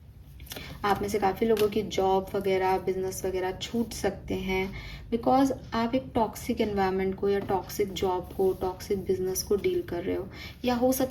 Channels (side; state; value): both; identical; correlation 1.00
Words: आप में से काफ़ी लोगों की जॉब वगैरह, बिजनेस वगैरह छूट सकते हैं, बिकॉज आप एक टॉक्सिक एनवायरनमेंट को या टॉक्सिक जॉब को, टॉक्सिक बिजनेस को डील कर रहे हो, या हो